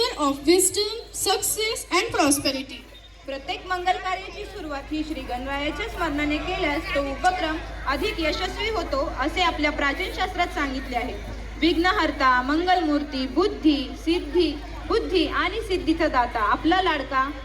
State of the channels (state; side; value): identical; both; correlation 1.00